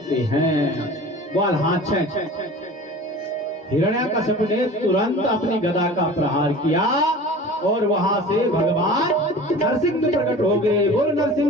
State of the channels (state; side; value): normal; both; correlation 0.40